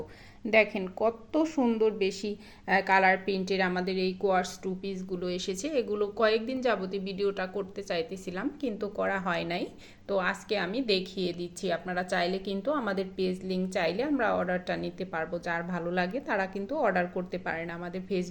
দেখেন কত সুন্দর বেশি কালার প্রিন্টের আমাদের এই কোয়ার্স টু পিসগুলো এসেছে। এগুলো কয়েকদিন যাবতীয় ভিডিওটা করতে চাইতেছিলাম কিন্তু করা হয় নাই। তো আজকে আমি দেখিয়ে দিচ্ছি। আপনারা চাইলে কিন্তু আমাদের পেজ লিংক চাইলে আমরা অর্ডারটা নিতে পারবো। যার ভালো লাগে তারা কিন্তু অর্ডার করতে পারেন। আমাদের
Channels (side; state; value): both; identical; correlation 1.00